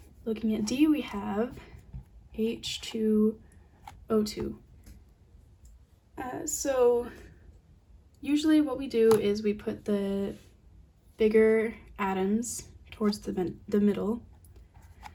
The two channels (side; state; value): both; identical; correlation 1.00